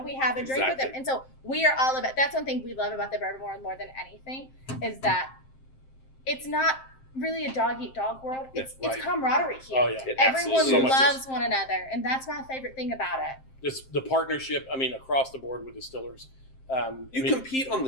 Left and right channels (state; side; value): late; right; 7.6 ms